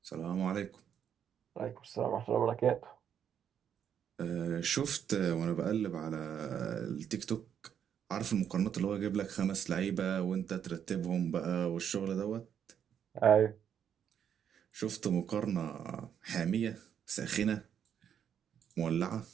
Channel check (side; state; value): left; quieter; 8.6 dB